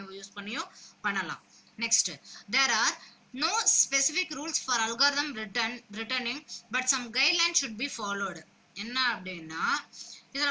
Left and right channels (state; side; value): identical; both; correlation 1.00